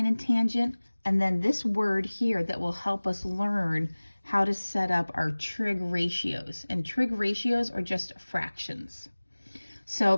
and tangent, and then this word here that will help us learn how to set up our trig ratios. And trig ratios are just fractions.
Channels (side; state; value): both; inverted; correlation -1.00